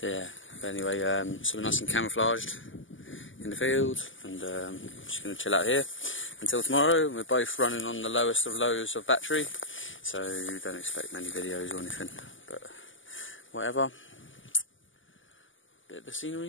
yeah, but anyway, so we're nice and camouflaged in the field, and just going to chill out here until tomorrow. We're both running on the lowest of lows of battery, so don't expect many videos or anything, but whatever. Bit of the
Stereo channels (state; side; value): late; right; 0.57 ms